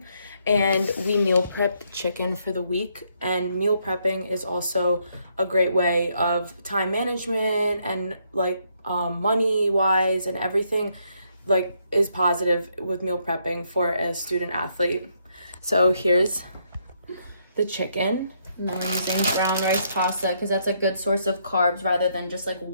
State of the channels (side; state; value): both; inverted; correlation -0.74